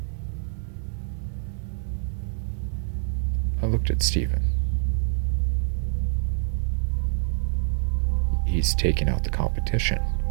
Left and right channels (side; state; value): left; silent; digital silence